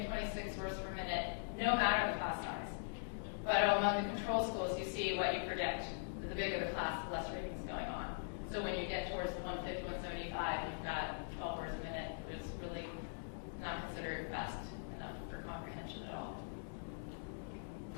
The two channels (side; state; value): right; silent; digital silence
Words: 26 words per minute, no matter the class size. But among the control schools, you see what you predict. The bigger the class, the less reading is going on. So when you get towards the 150, 175, you've got 12 words a minute. It's really not considered fast enough for comprehension at all.